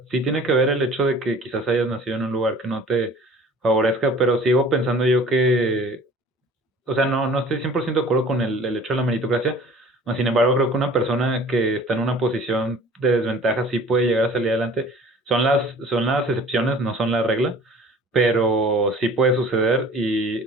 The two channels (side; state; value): both; normal; correlation 0.47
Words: sí tiene que ver el hecho de que quizás hayas nacido en un lugar que no te favorezca, pero sigo pensando yo que, o sea, no estoy 100% de acuerdo con el hecho de la meritocracia. Sin embargo, creo que una persona que está en una posición de desventaja sí puede llegar a salir adelante. Son las excepciones, no son la regla, pero sí puede suceder. Y,